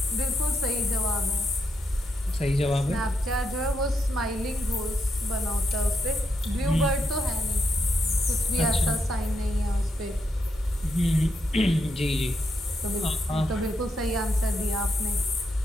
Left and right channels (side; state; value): both; normal; correlation 0.80